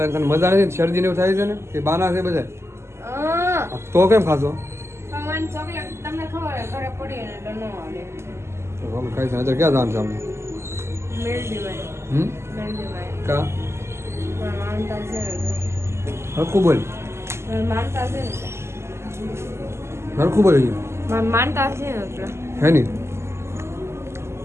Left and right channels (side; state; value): left; late; 0.13 ms